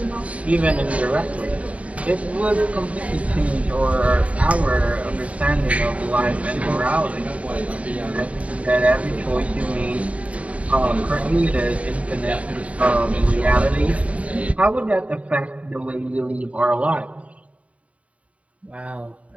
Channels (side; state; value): left; late; 0.066 ms